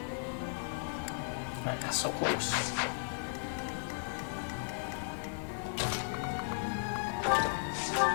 Ah, so close.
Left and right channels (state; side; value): silent; right; digital silence